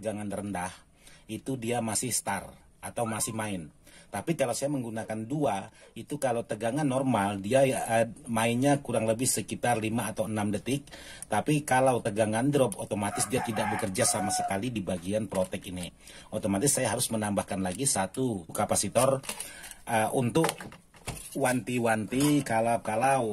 rendah itu dia masih start atau masih main. Tapi kalau saya menggunakan 2, itu kalau tegangan normal dia mainnya kurang lebih sekitar 5 atau 6 detik. Tapi kalau tegangan drop, otomatis dia tidak bekerja sama sekali di bagian protek ini. Otomatis saya harus menambahkan lagi 1 kapasitor untuk wanti-wanti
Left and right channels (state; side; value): identical; both; correlation 1.00